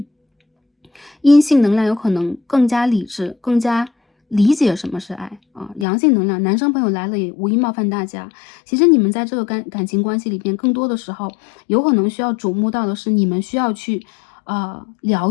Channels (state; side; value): drops out; right; at 5.9 s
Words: 阴性能量有可能更加理智，更加理解什么是爱啊。阳性能量，男生朋友来了也无意冒犯大家。其实你们在这个感情关系里边，更多的时候有可能需要瞩目到的是你们需要去